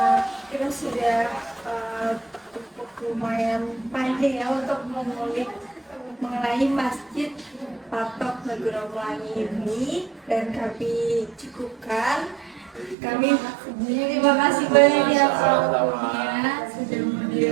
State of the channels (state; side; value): drops out; left; at 13.0 s